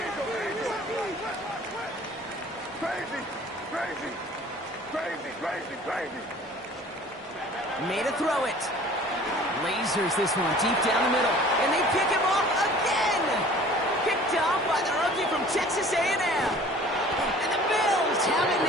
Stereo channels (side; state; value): both; normal; correlation 0.48